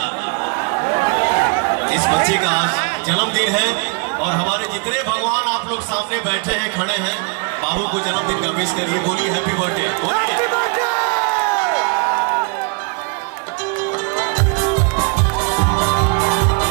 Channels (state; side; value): quieter; left; 34.9 dB